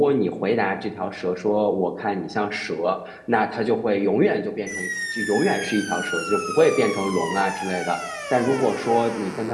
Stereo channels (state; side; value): identical; both; correlation 1.00